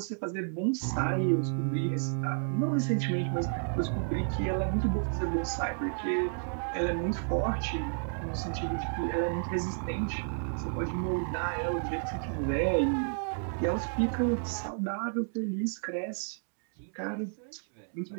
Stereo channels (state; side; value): silent; left; digital silence